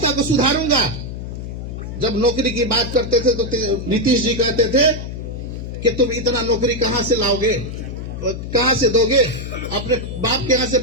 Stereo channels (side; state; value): left; noise; hum, 7 dB below the sound